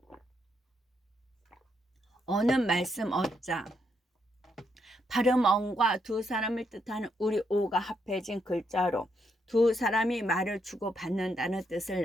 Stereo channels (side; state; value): both; normal; correlation 0.78